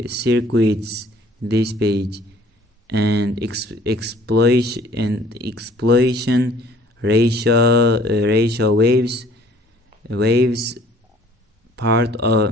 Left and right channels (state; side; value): normal; both; correlation 0.55